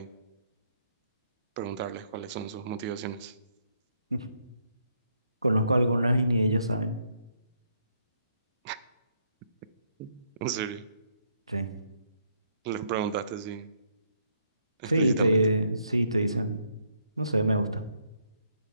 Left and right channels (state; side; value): inverted; both; correlation -0.72